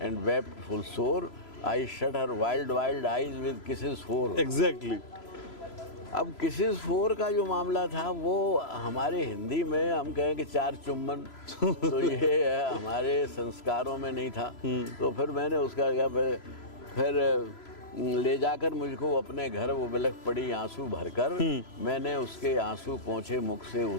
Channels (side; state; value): right; late; 3.0 ms